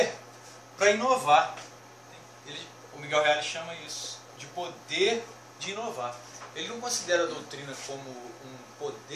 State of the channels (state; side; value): identical; both; correlation 1.00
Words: para inovar. O Miguel Reale chama isso de poder de inovar. Ele não considera a doutrina como um